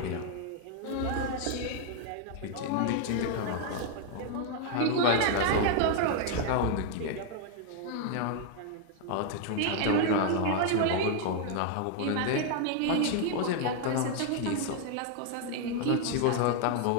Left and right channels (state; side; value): different; both; correlation 0.00